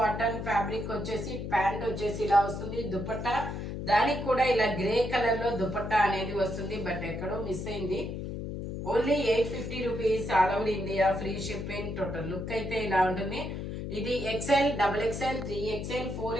ఫ్యాబ్రిక్ వచ్చేసి ప్యాంట్ వచ్చేసి ఇలా వస్తుంది. దుపట్టా దానికి కూడా ఇలా గ్రే కలర్ లో దుపట్టా అనేది వస్తుంది. బట్ ఎక్కడో మిస్ అయింది. Only 850 rupees, all over India, free shipping. Total look అయితే ఇలా ఉంటుంది. ఇది XL, double XL, 3XL,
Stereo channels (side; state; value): left; noise; hum, 5 dB below the sound